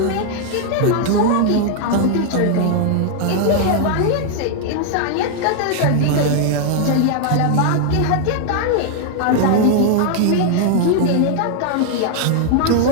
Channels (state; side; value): different; both; correlation 0.00